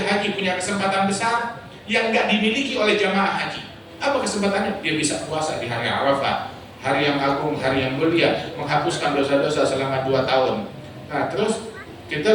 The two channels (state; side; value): identical; both; correlation 1.00